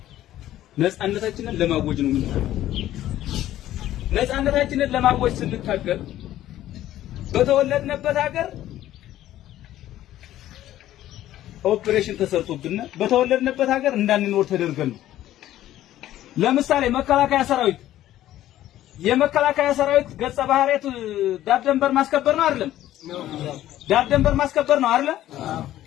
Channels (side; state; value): right; quieter; 13.5 dB